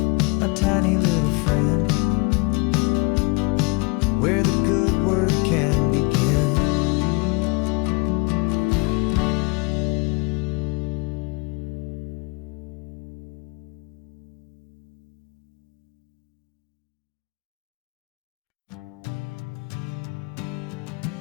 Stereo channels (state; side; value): quieter; right; 28.8 dB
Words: my tiny little friend, where the good work can begin.